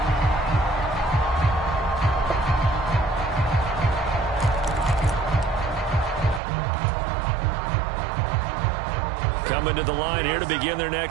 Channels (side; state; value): left; drops out; at 6.4 s